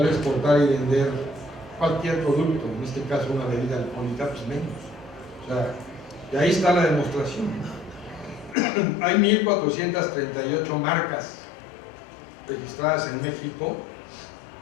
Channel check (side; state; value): right; drops out; at 8.6 s